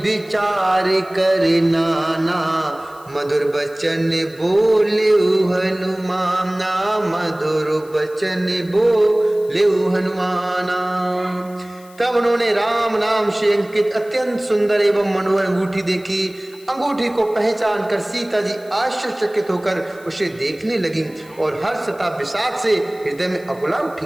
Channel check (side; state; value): left; noise; hiss, 25 dB below the sound